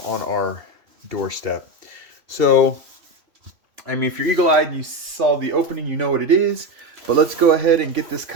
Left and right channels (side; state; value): left; late; 3.0 ms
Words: on our doorstep. So, I mean, if you're eagle-eyed and you saw the opening, you know what it is. But let's go ahead and get this